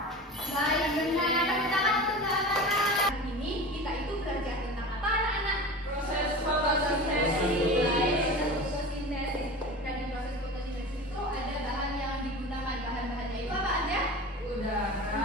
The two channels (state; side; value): normal; both; correlation 0.33